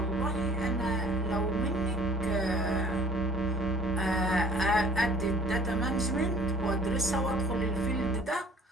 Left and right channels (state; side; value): normal; both; correlation 0.53